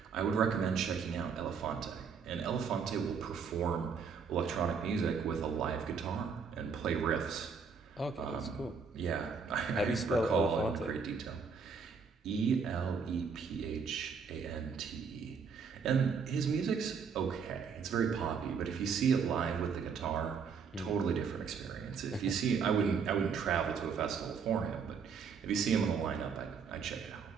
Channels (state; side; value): quieter; left; 5.8 dB